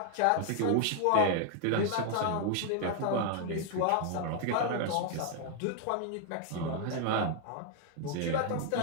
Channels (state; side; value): different; both; correlation 0.00